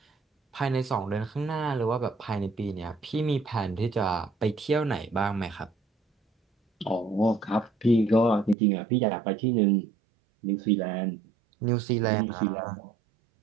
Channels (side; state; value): left; drops out; at 8.6 s